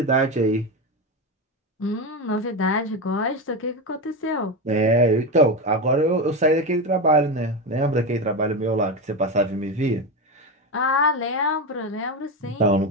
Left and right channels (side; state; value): both; normal; correlation 0.16